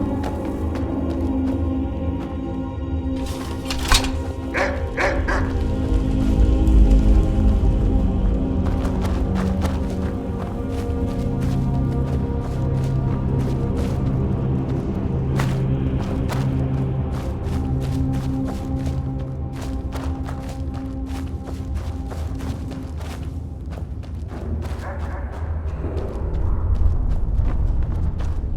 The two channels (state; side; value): identical; both; correlation 1.00